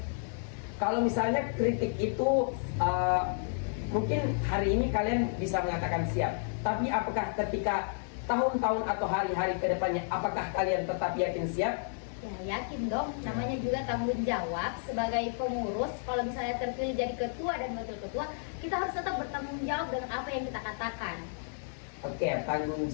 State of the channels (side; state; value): right; silent; 57 dB below the other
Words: Kalau misalnya kritik itu mungkin hari ini kalian bisa mengatakan siap, tapi apakah ketika tahun-tahun atau hari-hari ke depannya, apakah kalian tetap yakin siap? Ya, yakin dong. Namanya juga tanggung jawab sebagai pengurus. Kalau misalnya terpilih jadi ketua dan wakil ketua, kita harus tetap bertanggung jawab dengan apa yang kita katakan. Oke, tanggung